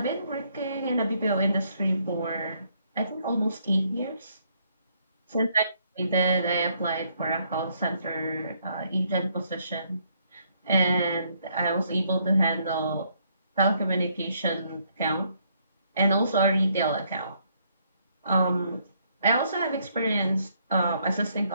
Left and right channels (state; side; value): inverted; both; correlation -0.70